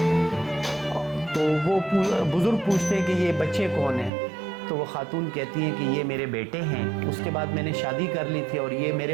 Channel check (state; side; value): drops out; left; at 4.1 s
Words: تو وہ بزرگ پوچھتے ہیں کہ یہ بچے کون ہیں؟ تو وہ خاتون کہتی ہے کہ یہ میرے بیٹے ہیں، اس کے بعد میں نے شادی کر لی تھی اور یہ